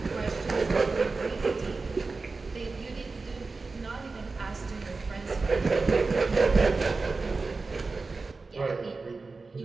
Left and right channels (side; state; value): left; quieter; 3.9 dB